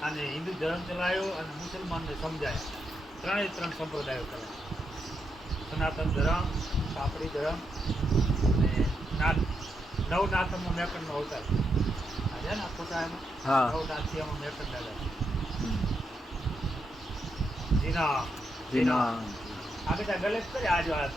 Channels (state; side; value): normal; both; correlation 0.82